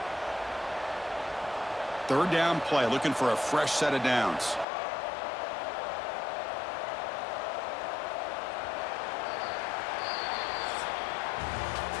Third down play, looking for a fresh set of downs.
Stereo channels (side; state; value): right; drops out; at 4.7 s